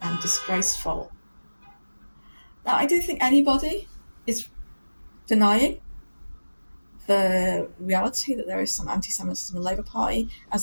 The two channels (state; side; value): inverted; both; correlation -1.00